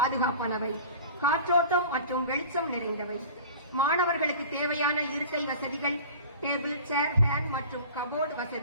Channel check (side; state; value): both; inverted; correlation -0.41